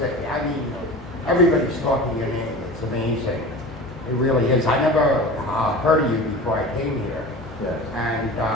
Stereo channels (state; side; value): normal; both; correlation 0.35